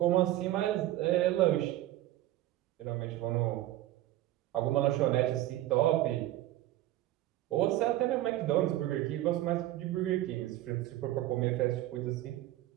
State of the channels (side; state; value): left; quieter; 15.0 dB